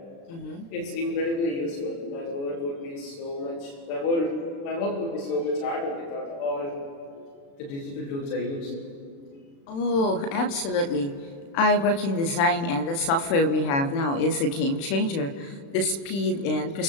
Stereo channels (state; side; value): late; right; 36 ms